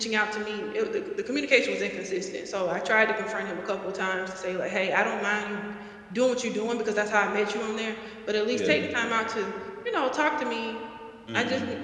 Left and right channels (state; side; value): identical; both; correlation 1.00